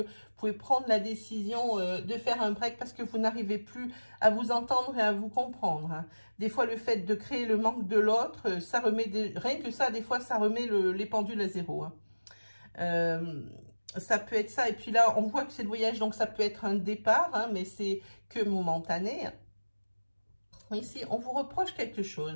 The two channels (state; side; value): inverted; both; correlation -1.00